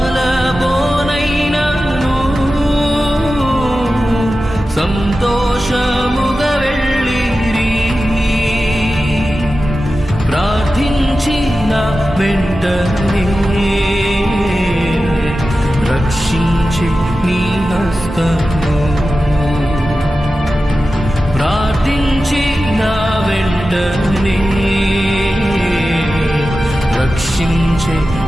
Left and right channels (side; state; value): both; normal; correlation 0.94